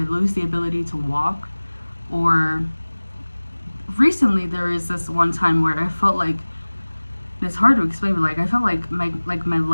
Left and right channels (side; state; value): both; inverted; correlation -1.00